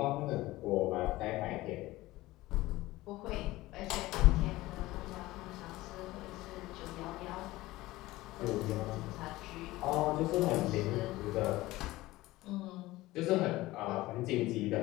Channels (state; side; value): quieter; right; 18.2 dB